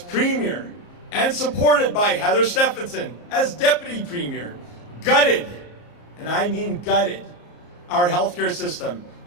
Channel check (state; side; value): late; right; 34 ms